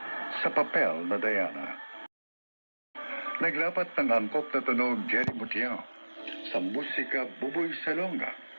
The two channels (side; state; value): both; inverted; correlation -1.00